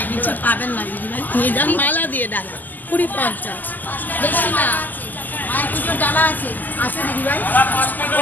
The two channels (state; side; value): late; right; 0.085 ms